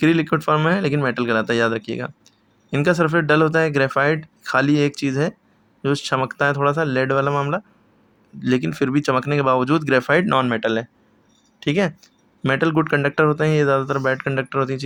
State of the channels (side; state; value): both; identical; correlation 1.00